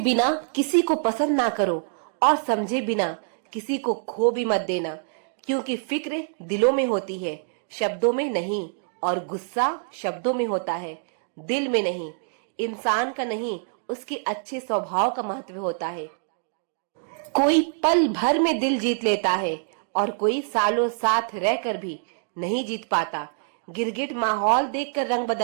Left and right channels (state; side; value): silent; left; digital silence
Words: किसी को पसंद ना करो, और समझे बिना किसी को खो भी मत देना। क्योंकि फिक्र दिलों में होती है, शब्दों में नहीं। और गुस्सा शब्दों में होता है, दिल में नहीं। इंसान का नहीं, उसके अच्छे स्वभाव का महत्व होता है। कोई पल भर में दिल जीत लेता है, और कोई सालों साथ रहकर भी नहीं जीत पाता। गिरगिट माहौल देखकर रंग